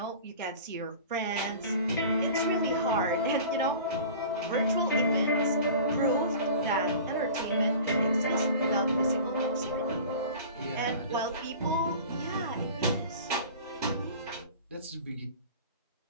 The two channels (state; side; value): inverted; both; correlation -0.40